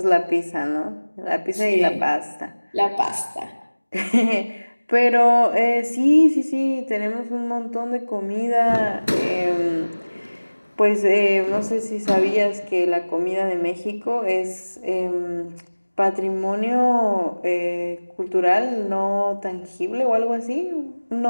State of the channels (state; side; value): inverted; both; correlation -1.00